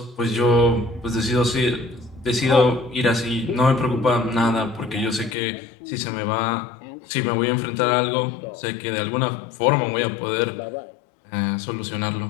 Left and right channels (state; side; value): drops out; right; at 5.4 s